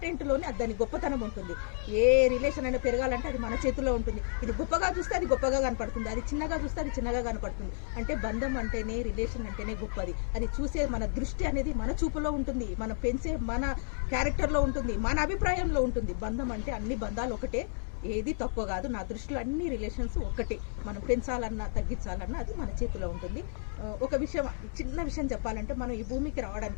అది దాని గొప్పతనం ఉంటుంది. ఏ రిలేషన్ అయినా పెరగాలంటే అది మన చేతిలో ఉంటుంది. ఇది గొప్పగా చూస్తే అది గొప్పగా కనపడుతుంది, అది చిన్నగా చూస్తే అది చిన్నగా కనపడుతుంది. అంటే బంధం అంటేనే, రిలేషన్ అంటేనే గొప్పది. అది చూసే మన దృష్టి అనేది మన చూపులో ఉంటుంది, మనం పెంచే మన క్యారెక్టర్లో ఉంటుంది, మన అభిప్రాయంలో ఉంటుంది. బంధం అంటే అన్ని బంధాలు ఒకటే, ఏది తక్కువ కాదు. నా దృష్టిలో అన్ని రిలేషన్స్ ఒక్కటే. మనం పెంచాలన్నా తగ్గించాలన్నా అది మన చేతిలో ఉంటుంది. ఒక విషయం, చిన్న విషయం చెప్పాలంటే, మనం ఈ భూమికి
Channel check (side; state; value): right; silent; 57 dB below the other